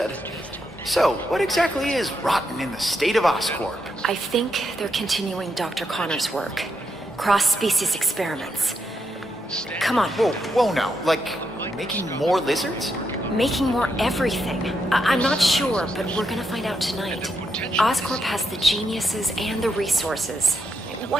So, what exactly is rotten in the state of Oscorp? I think they're continuing Dr. Connor's work. Cross-species experiments. Come on. Whoa now. Like, making more lizards? Making more everything. I'm not sure, but we're gonna find out tonight. Oscorp has the geniuses and the resources.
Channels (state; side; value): normal; both; correlation 0.81